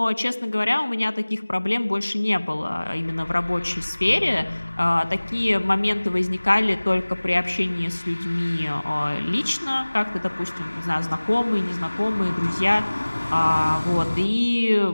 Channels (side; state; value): both; inverted; correlation -1.00